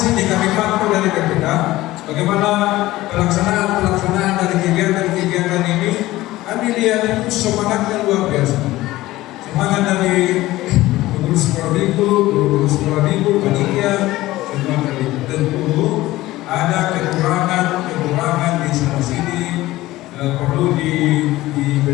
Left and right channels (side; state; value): right; quieter; 17.3 dB